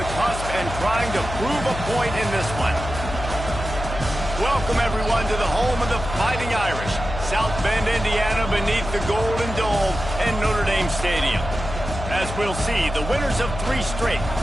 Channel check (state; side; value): noise; left; hum, 8 dB below the sound